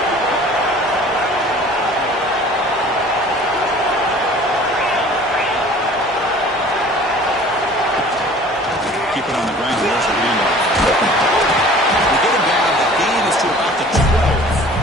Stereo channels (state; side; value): normal; both; correlation 0.47